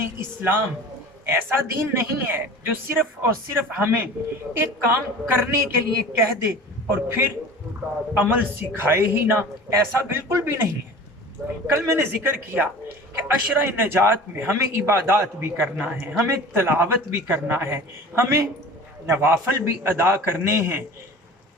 اسلام ایسا دین نہیں ہے جو صرف اور صرف ہمیں ایک کام کرنے کے لیے کہہ دے اور پھر عمل سکھائے ہی نہ، ایسا بالکل بھی نہیں ہے۔ کل میں نے ذکر کیا کہ عشرہ نجات میں ہمیں عبادات بھی کرنا ہے، ہمیں تلاوت بھی کرنا ہے، ہمیں نوافل بھی ادا کرنے ہیں۔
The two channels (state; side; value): normal; both; correlation 0.40